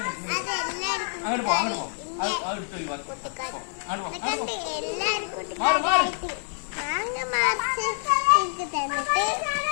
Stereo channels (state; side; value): silent; right; digital silence